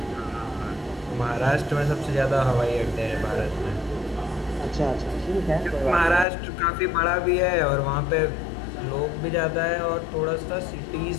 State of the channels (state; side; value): drops out; right; at 6.2 s